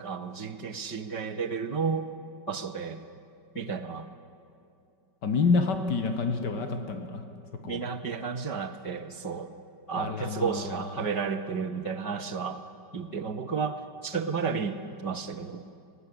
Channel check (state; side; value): late; right; 5.2 ms